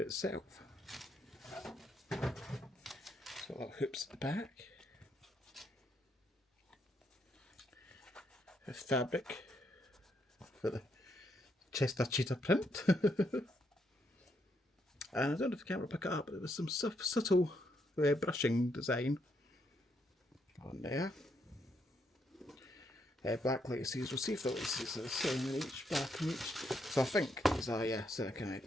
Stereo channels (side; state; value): both; normal; correlation 0.76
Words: So little hoops at the back. A fabric for the Chester cheetah print. And I don't know if the camera will pick it up, but there was some subtle brushing design on there. Black laces, we'll see if the laces are the same in each, black in each. So I think these are, kind of